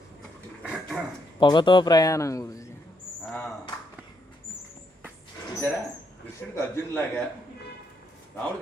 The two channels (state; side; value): normal; both; correlation 0.76